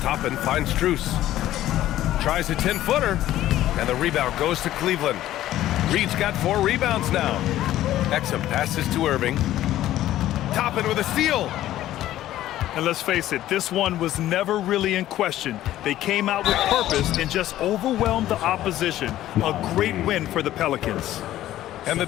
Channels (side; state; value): right; quieter; 13.7 dB